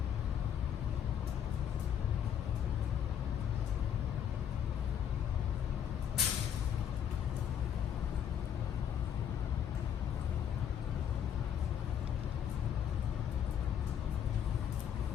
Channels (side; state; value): right; quieter; 8.9 dB